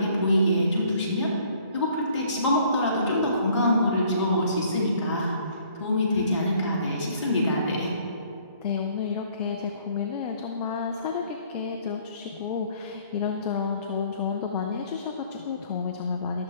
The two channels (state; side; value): inverted; both; correlation -0.59